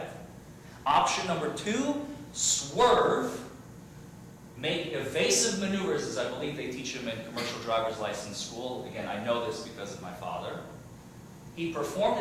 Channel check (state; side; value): identical; both; correlation 1.00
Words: Option number two, swerve, make evasive maneuvers, as I believe they teach him in commercial driver's license school. Again, I know this because of my father. He performed